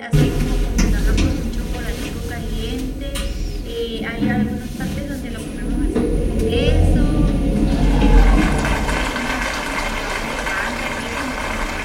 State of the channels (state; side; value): identical; both; correlation 1.00